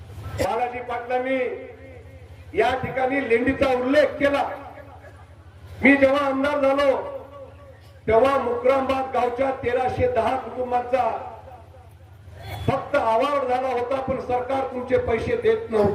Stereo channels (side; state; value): both; identical; correlation 1.00